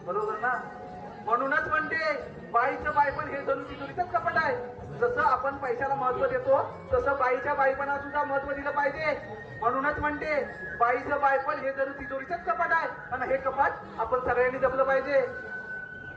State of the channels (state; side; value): identical; both; correlation 1.00